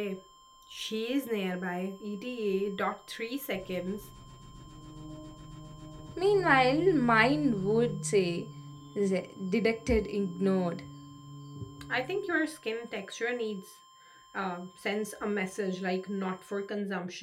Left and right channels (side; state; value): both; identical; correlation 1.00